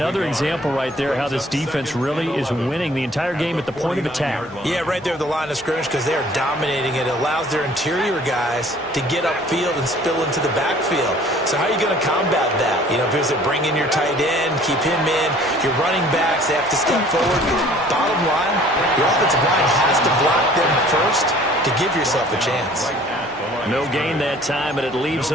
example right there how this defense really is winning the entire game at the point of attack. Yeah, right there at the line of scrimmage because they are dominating it. It allows their interior guys to get upfield and spill into the backfield. So how are you going to combat that? You know, if it was to bring in your tight end, keep him in, your running backs, they have to step forward. Bottom line, your offensive line has to block them first to give yourself a chance. No gain that time, and it leaves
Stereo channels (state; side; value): normal; both; correlation 0.53